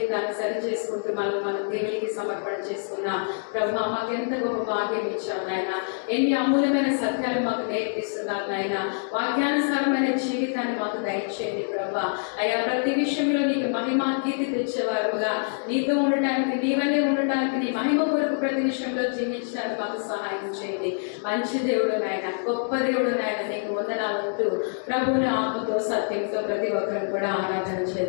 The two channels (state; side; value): silent; right; digital silence